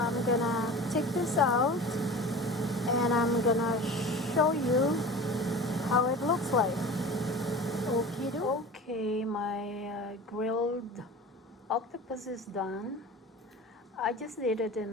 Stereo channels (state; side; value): normal; both; correlation 0.36